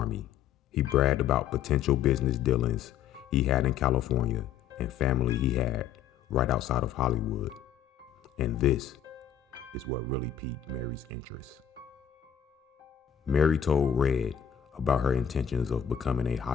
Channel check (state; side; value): quieter; right; 8.8 dB